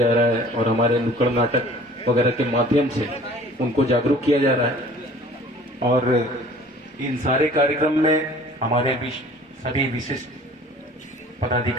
रहा है और हमारे नुक्कड़ नाटक वगैरह के माध्यम से उनको जागरूक किया जा रहा है। और इन सारे कार्यक्रम में हमारे सभी विशिष्ट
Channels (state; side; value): normal; both; correlation 0.49